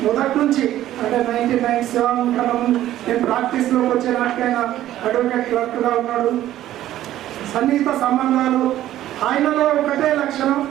మొదటి నుంచి అంటే 1997 కన్నా నేను ప్రాక్టీస్లోకి వచ్చే నాటికైనా అడ్వకేట్ క్లర్క్గా ఉన్నాడు. సన్నిహిత సంబంధాలు. ఆయనలో ఒకటే లక్షణం,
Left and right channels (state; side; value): quieter; left; 13.3 dB